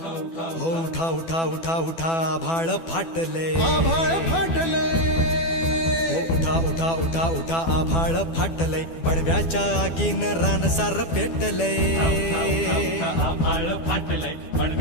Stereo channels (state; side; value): late; right; 12 ms